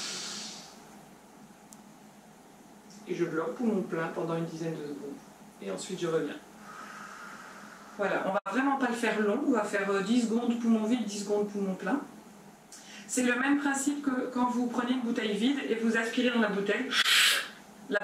Et je bloque poumon plein pendant une dizaine de secondes. Et ensuite je reviens. Voilà, on va vraiment pas le faire long, on va faire 10 secondes poumon vide, 10 secondes poumon plein. C'est le même principe que quand vous prenez une bouteille vide et vous aspirez dans la bouteille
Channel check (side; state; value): both; identical; correlation 1.00